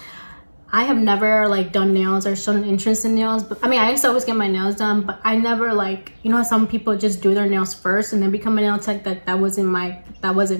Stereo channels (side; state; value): both; inverted; correlation -1.00